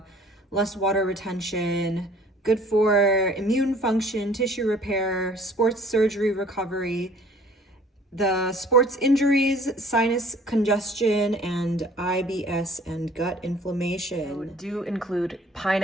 less water retention, good for immune function, tissue repair, sports surgery recovery, the sports injuries, sinus congestion, and IBS and gut inflammation. So do include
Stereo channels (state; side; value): normal; both; correlation 0.53